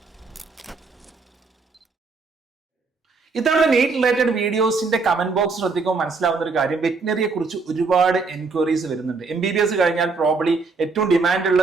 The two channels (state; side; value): quieter; left; 4.3 dB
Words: ഇത്തവണ നീറ്റ് റിലേറ്റഡ് വീഡിയോസിന്റെ കമന്റ് ബോക്സ് ശ്രദ്ധിക്കുമ്പോൾ മനസ്സിലാവുന്ന ഒരു കാര്യം, വെറ്റിനറിയെ കുറിച്ച് ഒരുപാട് എൻക്വയറീസ് വരുന്നുണ്ട്. MBBS കഴിഞ്ഞാൽ പ്രോബ്ലി ഏറ്റവും ഡിമാൻഡ്